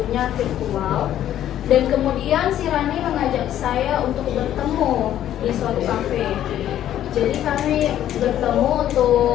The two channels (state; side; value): quieter; right; 11.6 dB